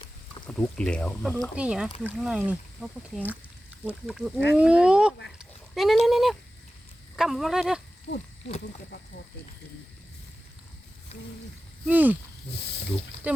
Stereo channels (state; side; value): normal; both; correlation 0.95